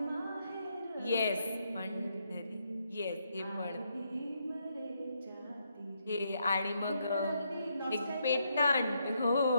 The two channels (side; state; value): both; inverted; correlation -0.77